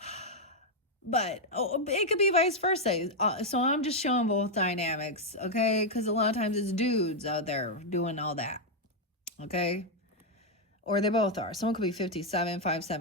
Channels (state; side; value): normal; both; correlation 0.00